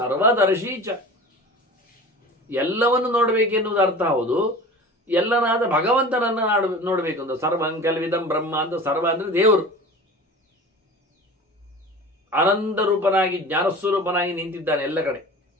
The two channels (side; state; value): both; normal; correlation 0.37